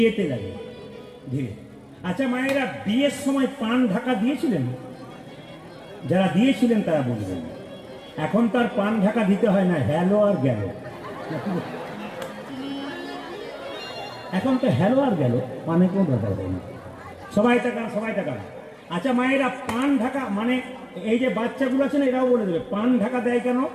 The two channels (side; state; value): both; identical; correlation 1.00